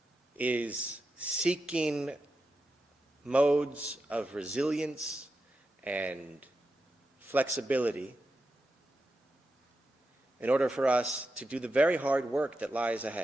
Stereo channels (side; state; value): both; normal; correlation 0.89